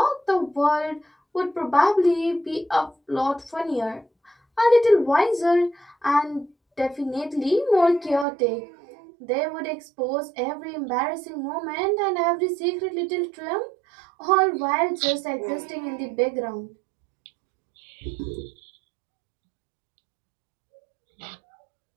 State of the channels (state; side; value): drops out; left; at 8.2 s